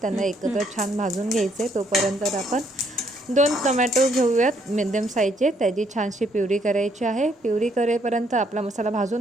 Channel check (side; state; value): both; normal; correlation 0.70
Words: त्यांना एकत्र छान भाजून घ्यायचे. तोपर्यंत आपण 2 टोमॅटो घेऊयात मिडियम साईजचे. त्याची छानशी प्युरी करायची आहे. प्युरी करेपर्यंत आपला मसाला